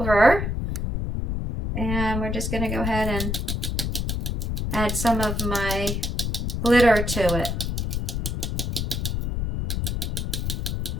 And we're just going to go ahead and add some of my glitter to it.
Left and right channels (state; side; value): noise; left; rumble, 1 dB below the sound